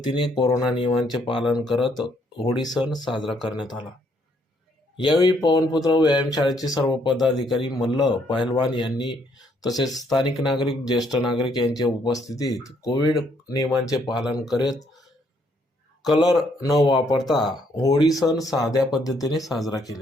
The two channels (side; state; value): both; normal; correlation 0.70